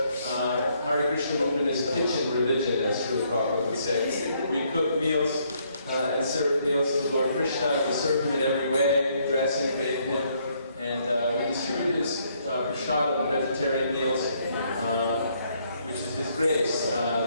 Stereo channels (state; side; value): inverted; both; correlation -0.70